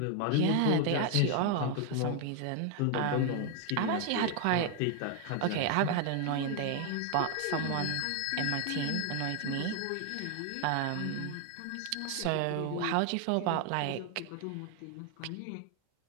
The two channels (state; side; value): different; both; correlation 0.01